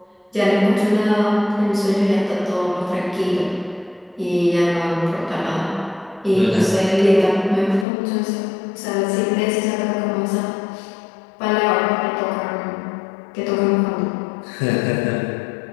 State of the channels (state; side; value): drops out; right; at 7.9 s